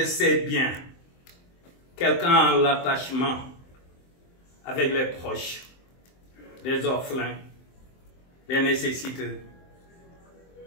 ses biens, quelqu'un l'attachement avec les proches, les orphelins, les nécessiteux,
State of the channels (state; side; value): late; right; 23 ms